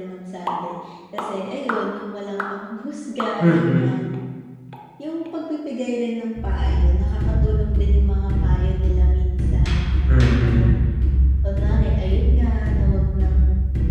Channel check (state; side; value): identical; both; correlation 1.00